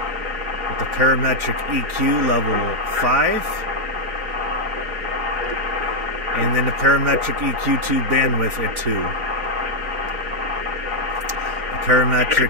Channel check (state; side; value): late; left; 4.3 ms